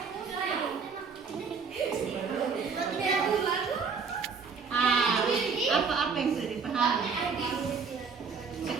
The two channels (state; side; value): quieter; left; 5.5 dB